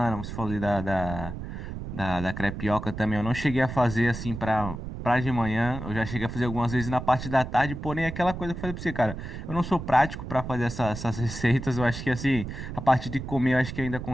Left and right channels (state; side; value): noise; right; rumble, 8 dB below the sound